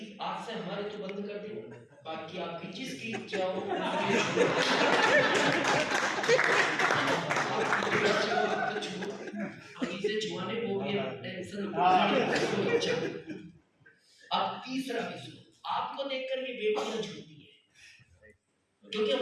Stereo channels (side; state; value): both; identical; correlation 1.00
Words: आज से हमारे तो बंद कर दें, बाकी आपकी जिसकी इच्छा हो छुआने को भी टेंशन। अब तीसरा भी सुनो, आपको देखकर ये बेटियां छूती है क्योंकि